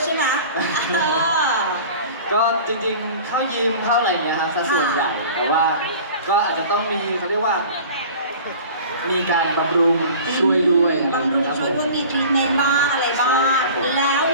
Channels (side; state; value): both; inverted; correlation -0.42